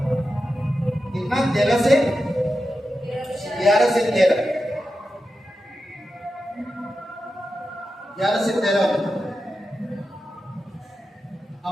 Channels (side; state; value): both; normal; correlation 0.90